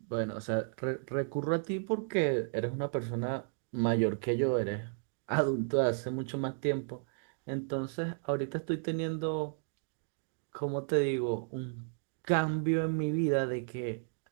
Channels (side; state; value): left; silent; digital silence